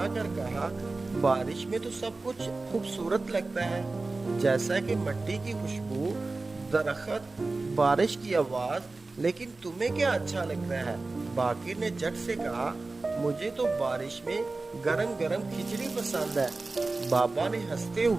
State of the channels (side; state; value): left; quieter; 3.5 dB